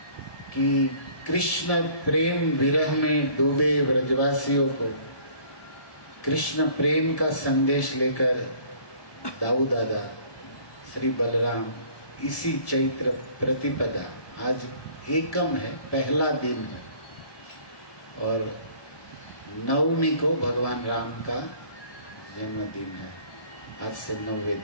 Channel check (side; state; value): right; late; 1.2 ms